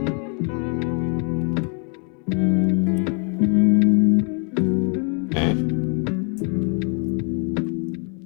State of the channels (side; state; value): right; quieter; 38.7 dB